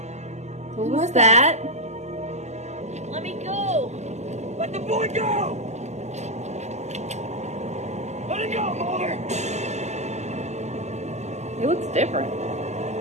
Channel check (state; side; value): late; left; 0.33 ms